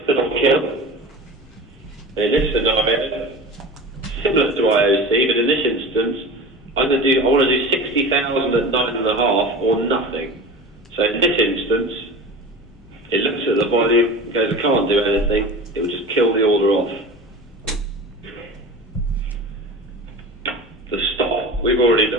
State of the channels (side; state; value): both; normal; correlation 0.34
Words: fill or kill. In this scenario, similar to IOC, but in this instance, I want to do 60,000 at 9.5 or nothing. So in this instance, it looks at the volume and goes, I can't do anything. It will just kill the order off. we've already